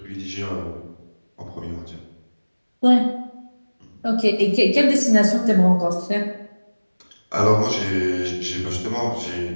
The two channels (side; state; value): both; inverted; correlation -1.00